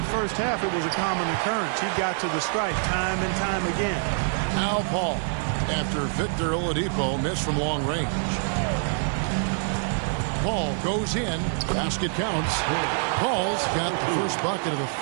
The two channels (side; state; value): left; silent; 61 dB below the other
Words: first half, it was a common occurrence. He got to the stripe time and time again. Now Paul, after Victor Oladipo missed from long range. Paul goes in. Basket counts. Paul's got the first bucket of the